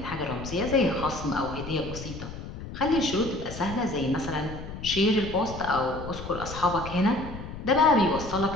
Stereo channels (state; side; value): noise; left; rumble, 10 dB below the sound